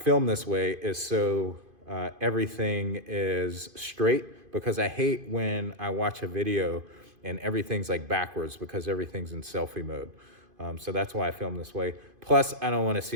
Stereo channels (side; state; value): left; late; 2.5 ms